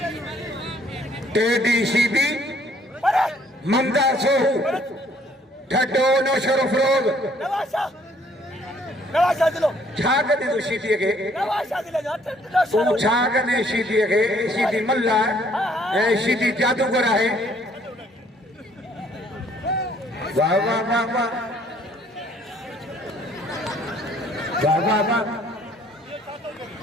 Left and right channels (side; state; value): both; normal; correlation 0.62